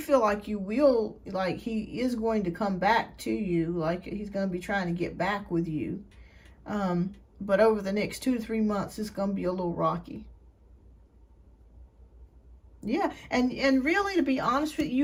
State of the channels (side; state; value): both; identical; correlation 1.00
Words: like you will, like he is going to come back to you, like he's going to be trying to get back with you. But over the next 2 to 3 months, it's going to be a little rocky. Yeah, and really, to be honest with you,